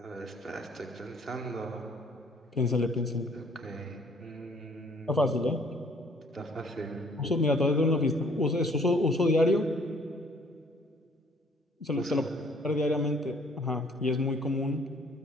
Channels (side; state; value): both; normal; correlation 0.59